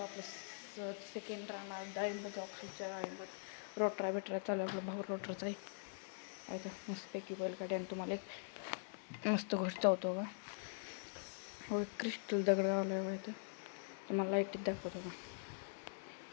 आपलं सेकंड राहणार डाळिंब. जाऊ खालच्या डाळिंब रोटरा बिटरा चालू आपलं भाऊ रोटराचा आहे तर मस्तपैकी बैलगाडी. आणि तुम्हाला एक मस्त गोष्ट होतो का, हो क्रिस्टल दगड गावला आहे तर तुम्हाला लाईटीत दाखवतो का,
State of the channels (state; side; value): silent; right; digital silence